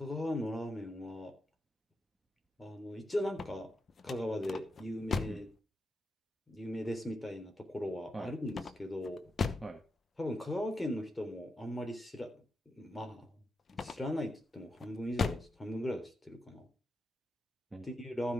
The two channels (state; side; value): normal; both; correlation 0.86